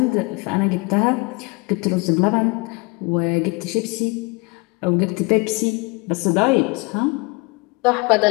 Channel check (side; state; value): right; quieter; 28.0 dB